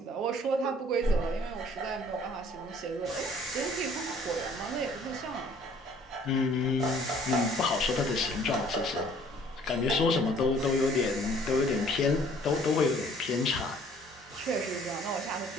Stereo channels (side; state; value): both; normal; correlation 0.56